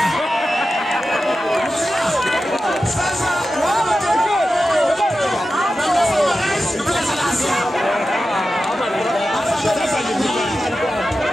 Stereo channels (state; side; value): normal; both; correlation 0.92